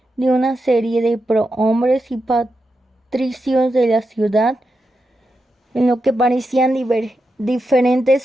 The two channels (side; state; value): both; normal; correlation 0.88